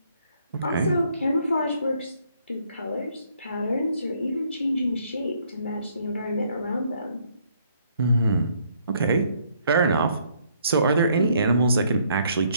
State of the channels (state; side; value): inverted; both; correlation -0.67